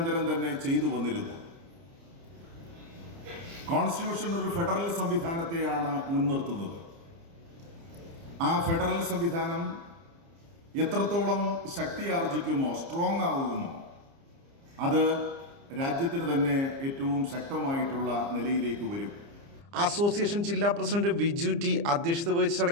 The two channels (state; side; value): late; left; 30 ms